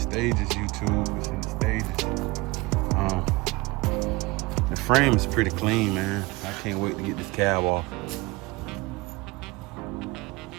YouTube. It's in the stages. The frame is pretty clean, man. I can't wait to get this cab off.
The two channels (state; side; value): quieter; left; 23.3 dB